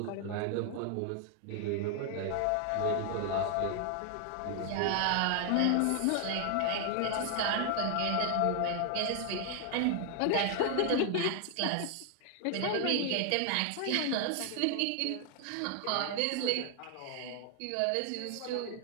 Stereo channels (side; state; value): both; different; correlation 0.00